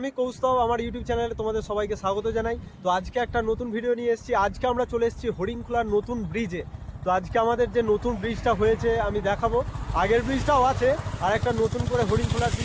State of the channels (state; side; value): identical; both; correlation 1.00